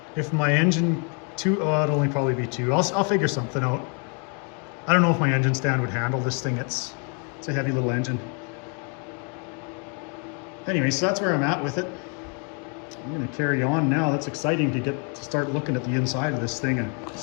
if my engine it'd only probably be 2. I'll figure something out. I don't know if my engine stand would handle this thing. It's a heavy little engine. Anyway, so that's where I'm at with it. I'm gonna carry on now. That's exciting to start looking at the inside of this thing and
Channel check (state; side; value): quieter; right; 38.1 dB